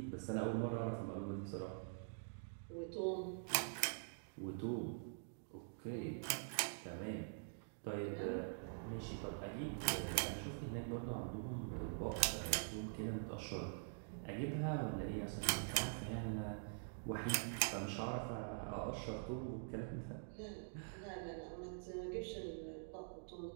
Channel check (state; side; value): silent; left; digital silence